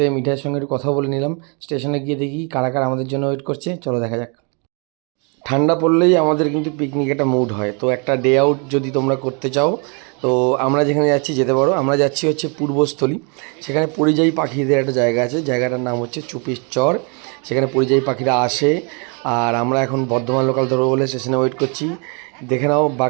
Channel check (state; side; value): quieter; left; 35.2 dB